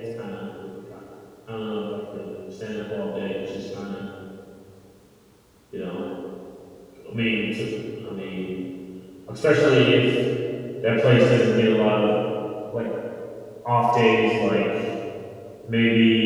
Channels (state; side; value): identical; both; correlation 1.00